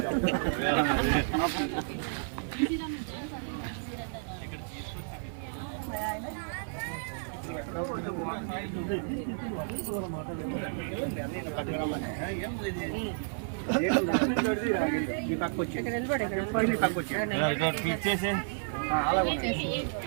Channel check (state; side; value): silent; left; digital silence